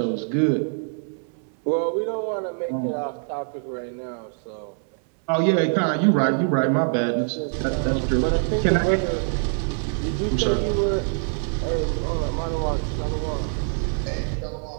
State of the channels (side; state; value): left; silent; 61 dB below the other